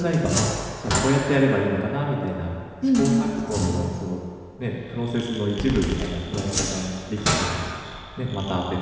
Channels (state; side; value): identical; both; correlation 1.00